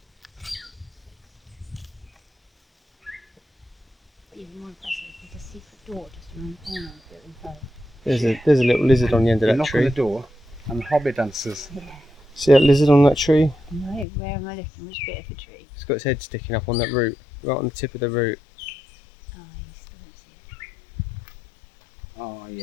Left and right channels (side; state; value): right; drops out; at 14.1 s